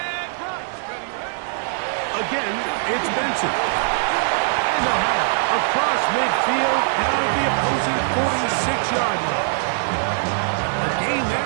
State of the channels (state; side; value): silent; left; digital silence